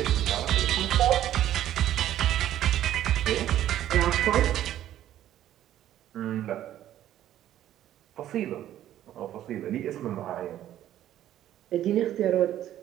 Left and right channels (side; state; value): left; quieter; 12.2 dB